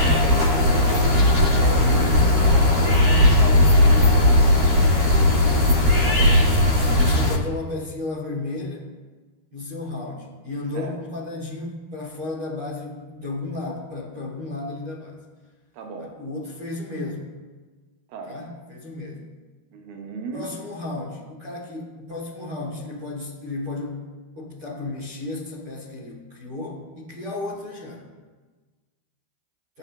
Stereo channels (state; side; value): late; left; 13 ms